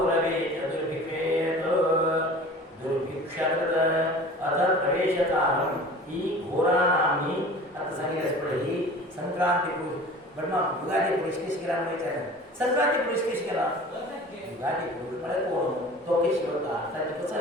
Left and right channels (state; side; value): normal; both; correlation 0.41